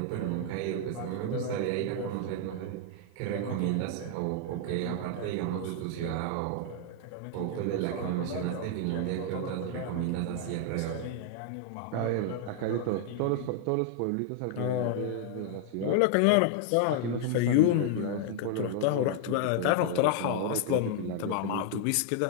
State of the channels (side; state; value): both; different; correlation 0.00